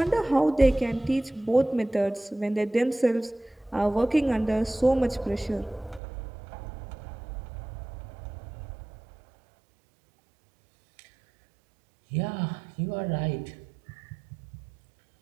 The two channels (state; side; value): drops out; left; at 6.0 s